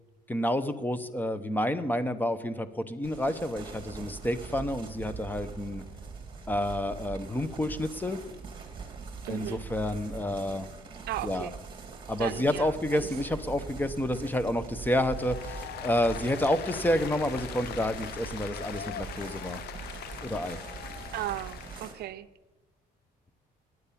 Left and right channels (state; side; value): normal; both; correlation 0.75